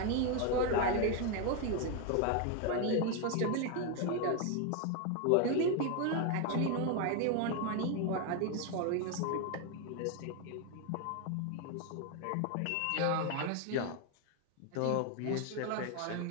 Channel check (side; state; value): both; different; correlation 0.01